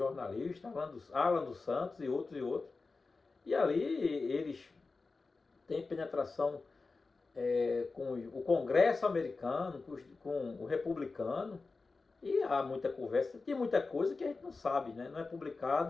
Alan dos Santos e outros. E ali eles têm penetração com o Congresso americano, com o republicano, e há muita conversa, tem muita coisa que a gente não sabe, né, não é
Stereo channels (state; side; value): quieter; right; 4.0 dB